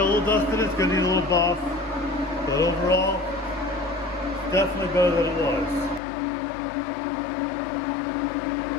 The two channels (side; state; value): right; drops out; at 6.0 s